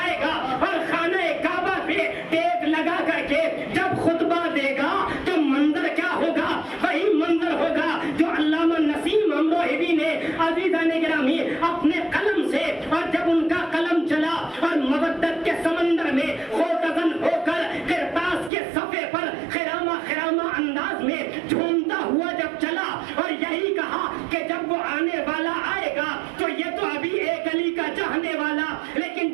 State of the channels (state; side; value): drops out; left; at 18.5 s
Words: گا اور خانہ کعبہ پہ ٹیک لگا کر کے جب خطبہ دے گا تو منظر کیا ہوگا؟ وہی منظر ہوگا جو علامہ نسیم امروہوی نے عزیزان گرامی اپنے قلم سے، اور جب ان کا قلم چلا اور مودت کے سمندر میں خوتزن ہو کر کرتاس کے صفحے پر خرامہ خرامہ انداز میں جھومتا ہوا جب چلا اور یہی کہا کہ جب وہ آنے والا آئے گا تو یہ تو ابھی ایک علی کا چاہنے والا، لیکن